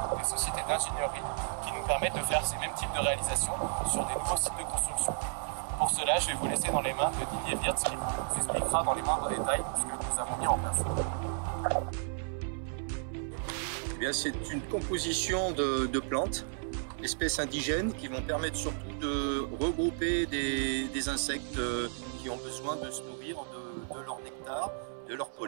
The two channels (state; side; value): silent; left; 56 dB below the other